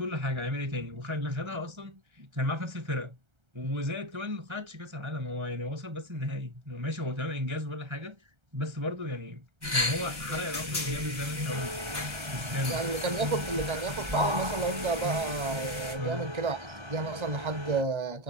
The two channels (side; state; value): left; late; 1.3 ms